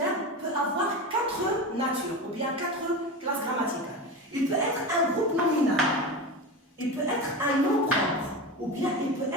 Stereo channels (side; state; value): both; normal; correlation 0.24